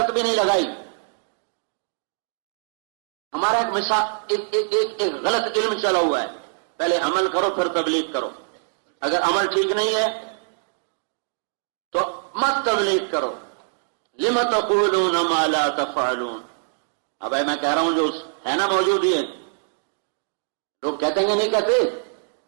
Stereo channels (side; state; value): left; silent; digital silence